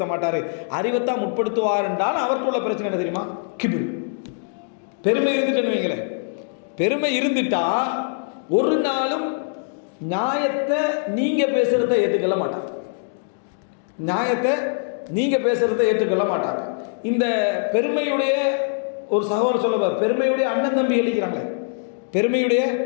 மாட்டார். அறிவைத்தான் முற்படுத்துவார் என்றால் அவற்றுள்ள பிரச்சனை என்ன தெரியுமா? கிபிர், பெருமை இருந்துட்டுன்னு வைங்களேன். பெருமை இருந்துட்டா ஒரு நாளும் நியாயத்தை நீங்கள் பேசுகிறத ஏற்றுக்கொள்ள மாட்டாங்க. நியாயத்தை நீங்கள் பேசுகிறத ஏற்றுக்கொள்ள மாட்டாங்க. இந்த பெருமையுடைய ஒரு சகோதரர் சொல்லுவார், பெருமையுடைய அண்ணன் தம்பி எழுக்கிறாங்களே, பெருமையுடைய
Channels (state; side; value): silent; right; digital silence